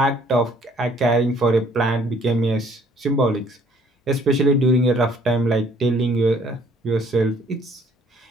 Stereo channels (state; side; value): normal; both; correlation 0.60